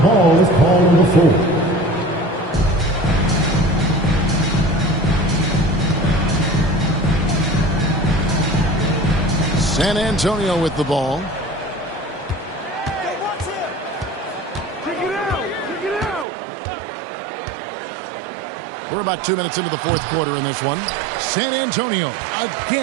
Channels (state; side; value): drops out; left; at 16.2 s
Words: ball is called number 4. San Antonio with the ball. We're about 2 minutes into the fourth quarter in this one. San Antonio